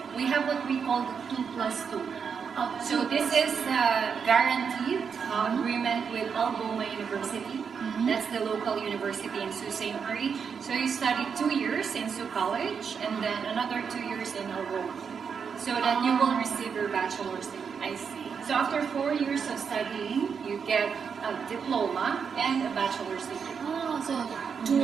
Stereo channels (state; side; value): quieter; left; 6.4 dB